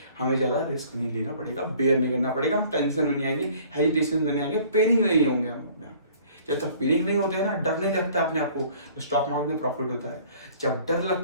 हमें ज्यादा रिस्क नहीं लेना पड़ेगा, बेयर नहीं करना पड़ेगा, हम टेंशन में नहीं आएंगे, हेजिटेशन में नहीं आएंगे, पेनिक नहीं होंगे हम अपने आप पे। जब तक पेनिक नहीं होते हैं ना, डर नहीं लगता अपने आप को, तो स्टॉक मार्केट में प्रॉफिट होता है। जब डर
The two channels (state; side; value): inverted; both; correlation -0.53